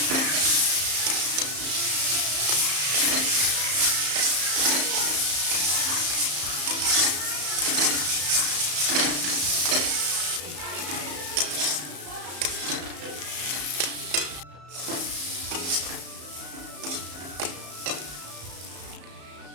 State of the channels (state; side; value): late; left; 34 ms